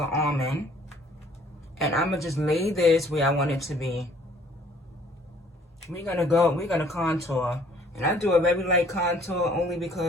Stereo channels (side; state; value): both; normal; correlation 0.58